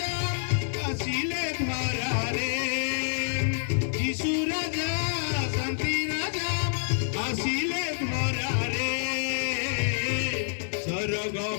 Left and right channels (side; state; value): right; silent; digital silence